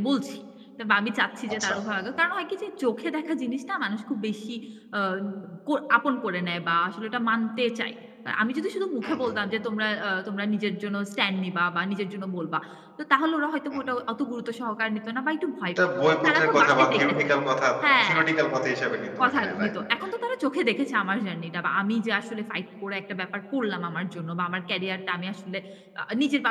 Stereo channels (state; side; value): identical; both; correlation 1.00